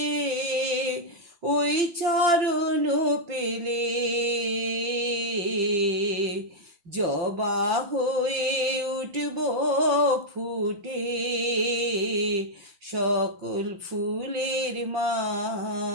ওই চরণ পেলে। জবা হয়ে উঠব ফুটে সকল ফুলের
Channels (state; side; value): late; left; 5.8 ms